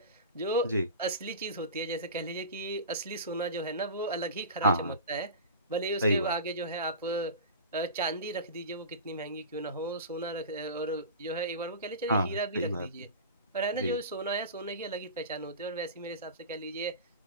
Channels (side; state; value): both; inverted; correlation -0.31